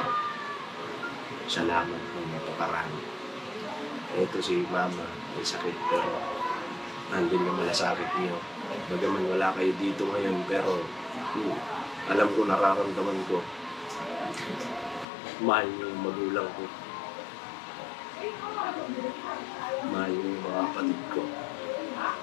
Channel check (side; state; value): right; drops out; at 15.1 s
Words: Salamat ng napakarami. Ito si mama, may sakit pero nandun yung malasakit niyo. Bagaman wala kayo dito ngayon pero alam ko, nararamdaman ko. Mahal niyo yung magulang ko. Mahal niyo yung mga kapatid ko.